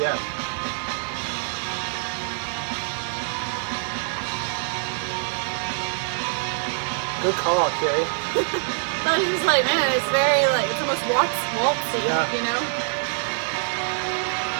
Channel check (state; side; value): silent; left; 59 dB below the other